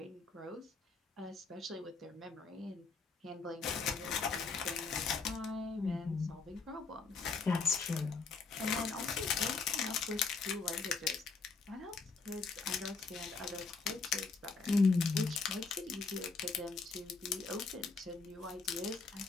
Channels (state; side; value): quieter; right; 4.5 dB